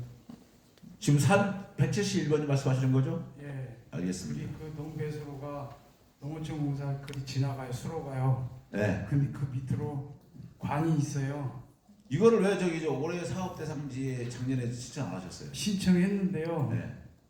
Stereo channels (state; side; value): identical; both; correlation 1.00